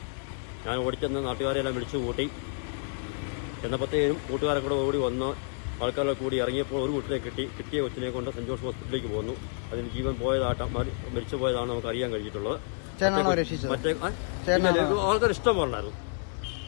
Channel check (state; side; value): silent; right; 58 dB below the other